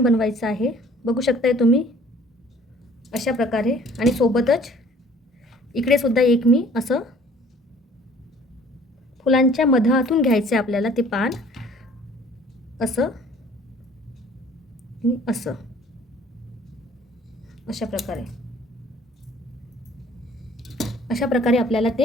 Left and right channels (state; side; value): normal; both; correlation 0.54